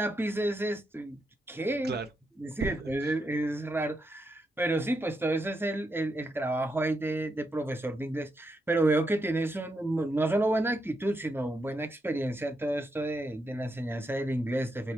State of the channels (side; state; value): both; normal; correlation 0.82